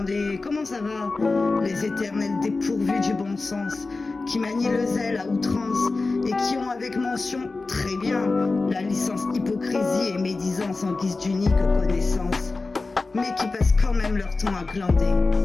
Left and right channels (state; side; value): quieter; right; 3.7 dB